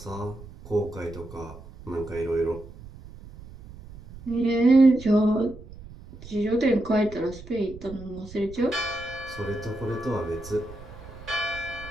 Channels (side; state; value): right; noise; rumble, 16 dB below the sound